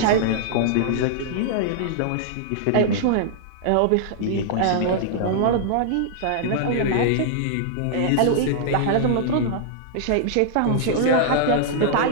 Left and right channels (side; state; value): both; different; correlation -0.01